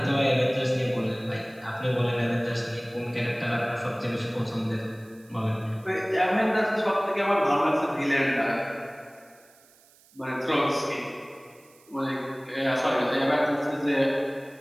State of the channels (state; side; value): noise; right; hiss, 28 dB below the sound